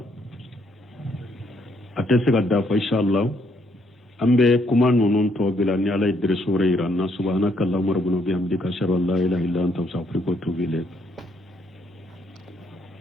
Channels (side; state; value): both; normal; correlation 0.71